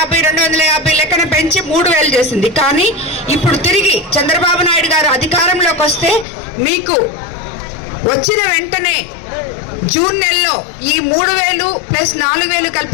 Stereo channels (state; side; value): drops out; right; at 6.2 s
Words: లెక్కన పెంచి 3000 చేసింది. కానీ ఇప్పుడు తిరిగి చంద్రబాబు నాయుడు గారు అధికారంలోకి వస్తే మీకు వచ్చిన వెంటనే జూన్ నెలలో ఈ 3000 ప్లస్ 4000